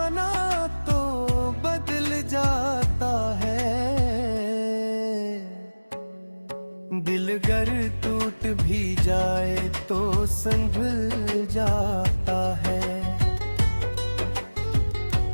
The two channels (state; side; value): inverted; both; correlation -1.00